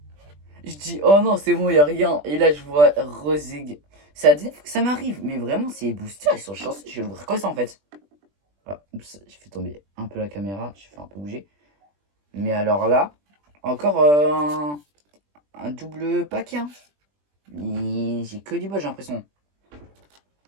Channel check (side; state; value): left; late; 20 ms